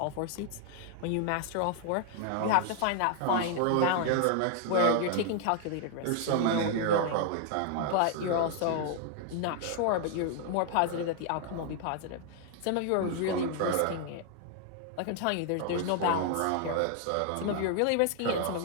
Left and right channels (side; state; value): both; different; correlation 0.00